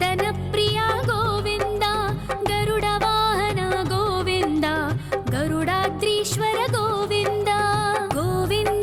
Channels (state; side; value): identical; both; correlation 1.00